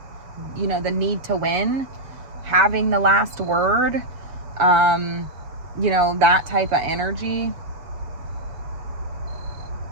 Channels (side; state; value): left; late; 7.2 ms